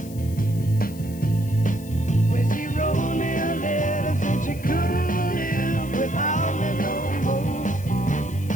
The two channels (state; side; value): noise; left; hiss, 19 dB below the sound